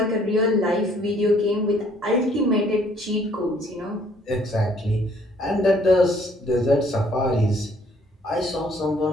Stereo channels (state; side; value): normal; both; correlation 0.62